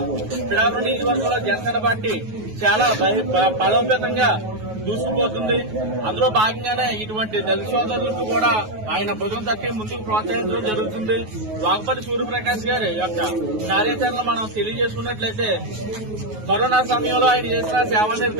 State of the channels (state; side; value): late; left; 9.4 ms